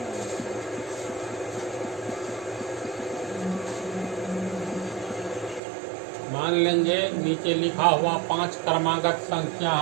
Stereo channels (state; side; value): drops out; left; at 5.6 s